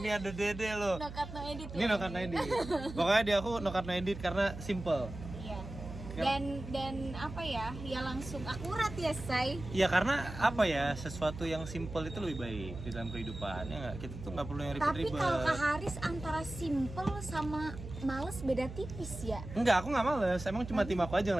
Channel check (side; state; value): right; noise; hum, 11 dB below the sound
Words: ada Dede loh. No cut no edit. Ini no cut no edit. Pokoknya di aku no cut no edit karena simple. Iya. Dan apa ya? Ya langsung akurat ya, Say. Iya, karena apa ya? Sesuatu yang simple itu lebih baik di dalam kehidupan. Ya nggak? Kita tuh nggak perlu yang Tapi ribet-ribet. kalau Kak Haris antara simple sama males beda tipis ya. Enggak, aku nggak males. Emang cuma tim aku aja yang